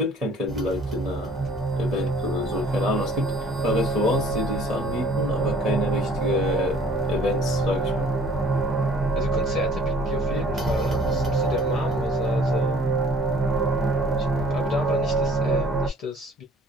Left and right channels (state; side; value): normal; both; correlation 0.55